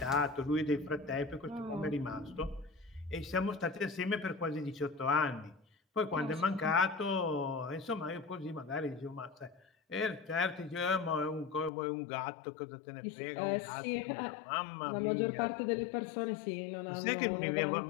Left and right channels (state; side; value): drops out; right; at 11.7 s